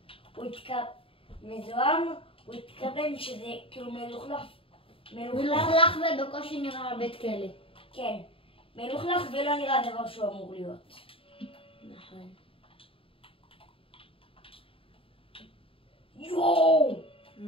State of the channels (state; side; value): late; right; 0.26 ms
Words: הוא מזוהם, הוא התכוון שזה כאילו מלוכלך. מלוכלך ובקושי נראה בית כלא. כן, מלוכלך ולא נראה דבר שהוא אמור להיות. נכון. יואו!